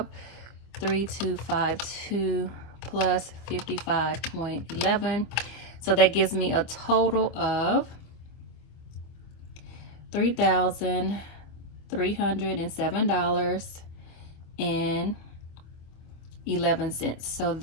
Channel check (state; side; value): late; right; 25 ms